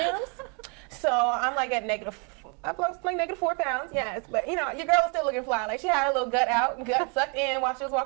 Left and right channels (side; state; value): left; quieter; 36.1 dB